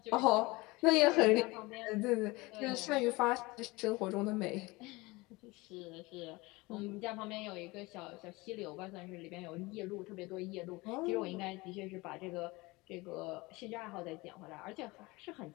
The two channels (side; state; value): right; quieter; 22.8 dB